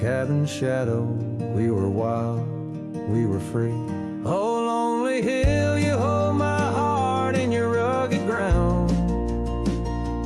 shadow, we were wild, we were free. Oh, lonely hill, you hold my heart in your rugged ground,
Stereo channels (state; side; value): identical; both; correlation 1.00